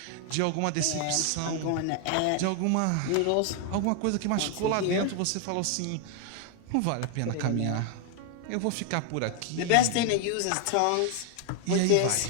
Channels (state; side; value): different; both; correlation 0.00